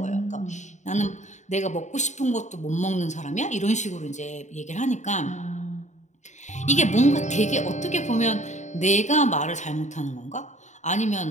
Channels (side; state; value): right; late; 0.34 ms